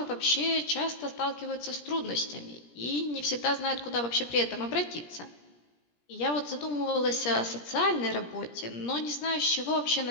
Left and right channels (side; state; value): right; late; 17 ms